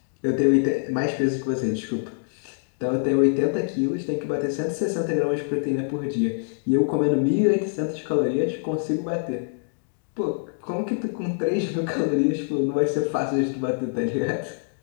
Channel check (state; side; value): silent; right; digital silence